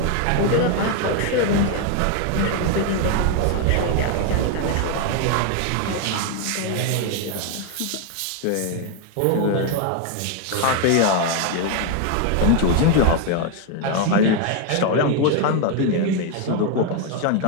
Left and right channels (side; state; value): both; different; correlation 0.01